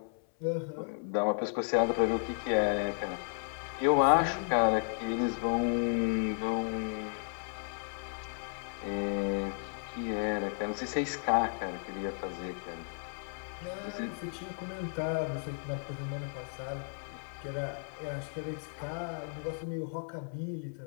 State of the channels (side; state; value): right; silent; 55 dB below the other